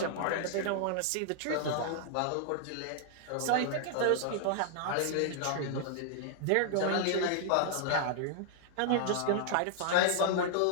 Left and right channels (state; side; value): different; both; correlation -0.01